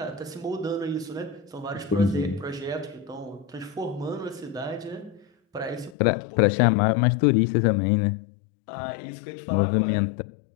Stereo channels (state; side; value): drops out; right; at 6.0 s